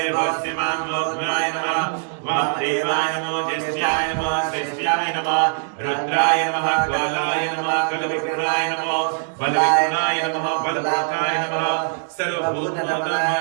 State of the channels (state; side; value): silent; left; digital silence